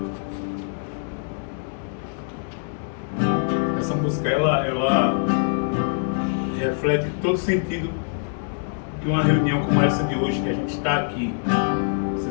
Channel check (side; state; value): right; silent; digital silence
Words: Essa música, ela reflete todo o sentido que que uma reunião como essa de hoje, que a gente está aqui,